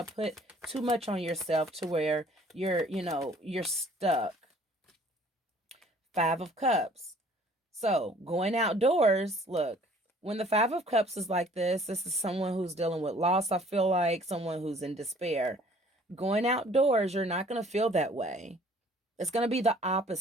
put too much on yourself to where you're stuck. 5 of Cups. So going outdoors, look, when the 5 of Cups is like this is someone who's dealing with loss, I feel like, someone who's in despair. Going outdoors, you're not going to feel that way. It's going to be the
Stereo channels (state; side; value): normal; both; correlation 0.55